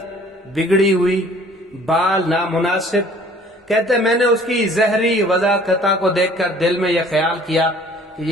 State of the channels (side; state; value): both; normal; correlation 0.53